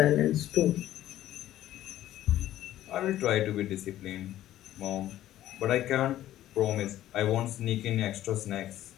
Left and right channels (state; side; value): quieter; right; 13.4 dB